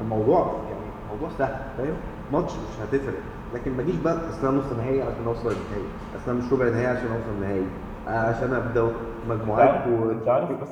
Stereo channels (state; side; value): identical; both; correlation 1.00